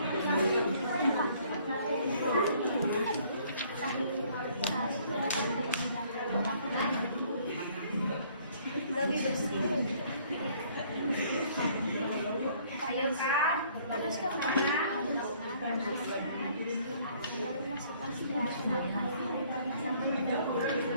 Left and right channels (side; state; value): both; inverted; correlation -0.61